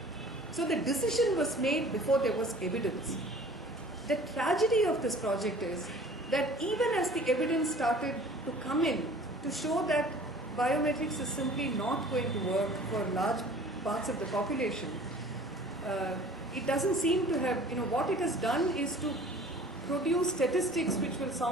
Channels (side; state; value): both; normal; correlation 0.47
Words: So the decision was made before there was evidence. The tragedy of this project is that even as the evidence started to come in to show that biometrics is simply not going to work for large parts of the population, it doesn't seem to have, what it has done is to produce statistics which will